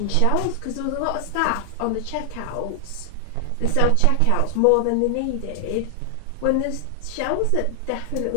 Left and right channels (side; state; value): both; different; correlation 0.00